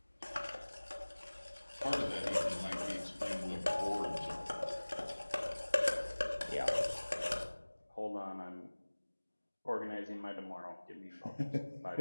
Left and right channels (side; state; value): both; inverted; correlation -1.00